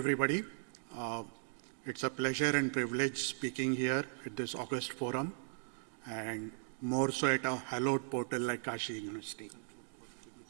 It's a pleasure and privilege speaking here at this August forum, and more so at a hallowed portal like Kashi University.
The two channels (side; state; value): left; silent; digital silence